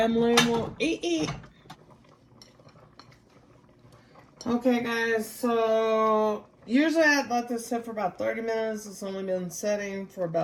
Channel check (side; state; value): both; identical; correlation 1.00